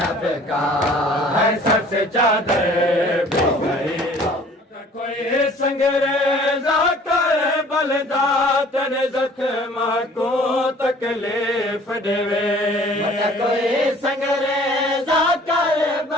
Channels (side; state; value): both; normal; correlation 0.52